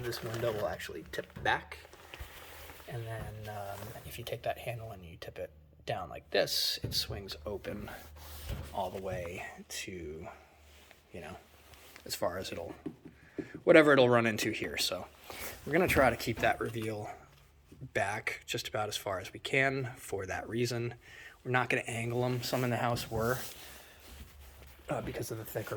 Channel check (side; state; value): both; identical; correlation 1.00